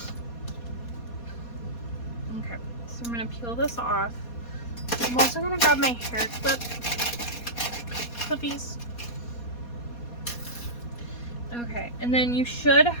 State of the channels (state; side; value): late; right; 4.2 ms